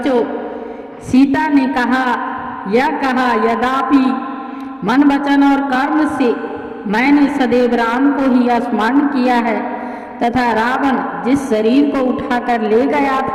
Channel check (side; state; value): both; identical; correlation 1.00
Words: सीता ने यह कहा यद्यपि मन वचन और कर्म से मैंने सदैव राम को ही स्मरण किया है तथा रावण जिस शरीर को उठाकर ले गया